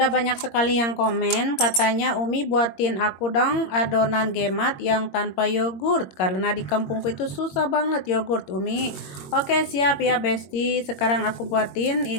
banyak sekali yang komen, katanya Umi buatin aku dong adonan gemat yang tanpa yogurt. Karena di kampungku itu susah banget yogurt, Umi. Oke, siap ya Besti. Sekarang aku buatin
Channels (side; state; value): right; late; 22 ms